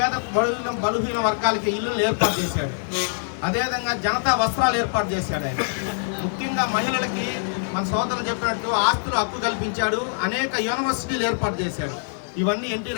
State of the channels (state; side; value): silent; right; 63 dB below the other